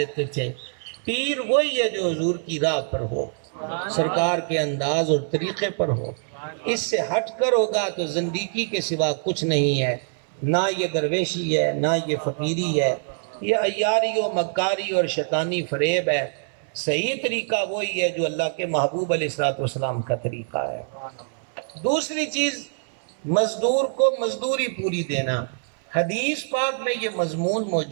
تھے۔ پیر وہی ہے جو حضور کی راہ پر ہو، سرکار کے انداز اور طریقے پر ہو، اس سے ہٹ کر ہوگا تو زندگی کے سوا کچھ نہیں ہے۔ نہ یہ درویشی ہے، نہ یہ فقیری ہے، یہ عیاری و مکاری اور شیطانی فریب ہے۔ صحیح طریقہ وہی ہے جو اللہ کے محبوب علیہ الصلوۃ والسلام کا طریقہ ہے۔ دوسری چیز، مزدور کو مزدوری پوری دینا۔ حدیث پاک میں یہ مضمون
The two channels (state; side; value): silent; left; 62 dB below the other